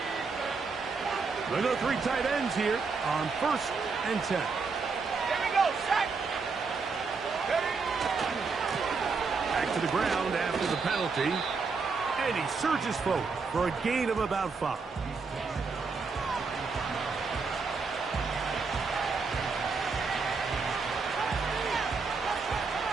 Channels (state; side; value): quieter; left; 4.7 dB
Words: They go 3 tight ends here on 1st and 10. Here we go, set. Back to the ground after the penalty. And he surges forward for a gain of about 5.